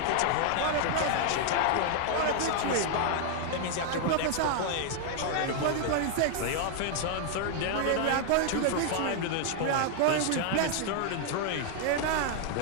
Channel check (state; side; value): different; both; correlation 0.00